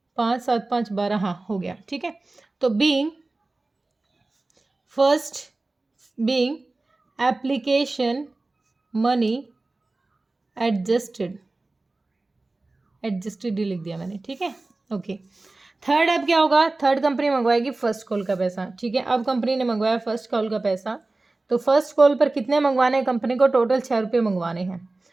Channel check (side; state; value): left; quieter; 3.1 dB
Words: 5 7 5 12, हाँ हो गया, ठीक है। तो बीइंग एप्लीकेशन मनी एडजस्टेड ही लिख दिया मैंने, ठीक है, ओके। थर्ड अब क्या होगा? थर्ड कंपनी मंगवाएगी फर्स्ट कॉल का पैसा, ठीक है। अब कंपनी ने मंगवाया फर्स्ट कॉल का पैसा, तो फर्स्ट कॉल पर कितने मंगवाने हैं कंपनी को? टोटल 6 रुपये मंगवाने हैं।